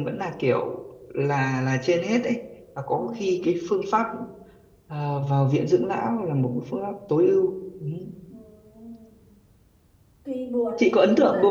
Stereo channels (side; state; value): both; identical; correlation 1.00